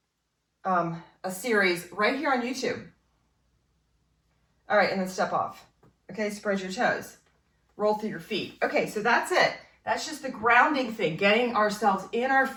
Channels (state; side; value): identical; both; correlation 1.00